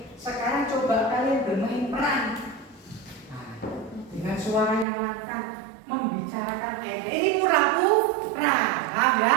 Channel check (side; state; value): left; drops out; at 4.9 s